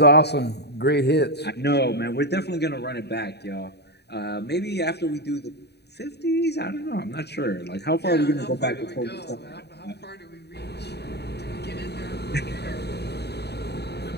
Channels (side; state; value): right; late; 0.48 ms